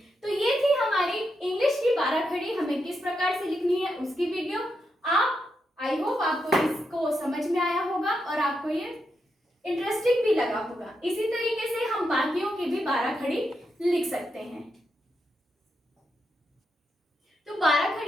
तो ये थी हमारी इंग्लिश की 12 खड़ी हमें किस प्रकार से लिखनी है उसकी वीडियो। आप आई होप आपको इसको समझ में आया होगा और आपको ये इंटरेस्टिंग भी लगा होगा। इसी तरीके से हम बाकियों की भी 12 खड़ी लिख सकते हैं। तो 12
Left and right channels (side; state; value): both; normal; correlation 0.84